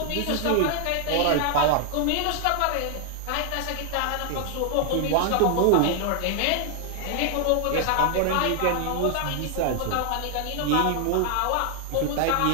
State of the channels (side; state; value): both; different; correlation 0.00